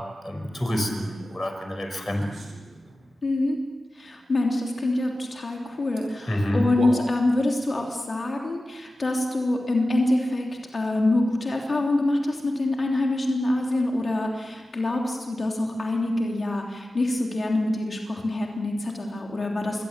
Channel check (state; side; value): normal; both; correlation 0.95